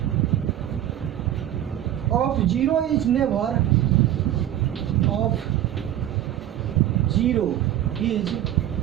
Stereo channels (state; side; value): quieter; left; 12.2 dB